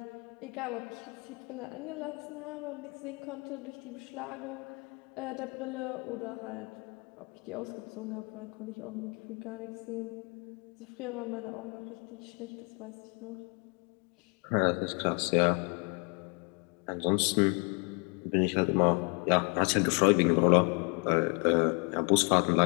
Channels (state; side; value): quieter; right; 33.8 dB